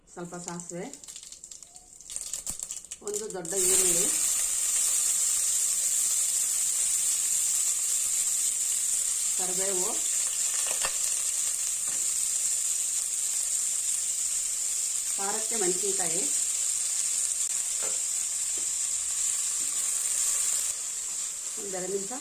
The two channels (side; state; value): both; identical; correlation 1.00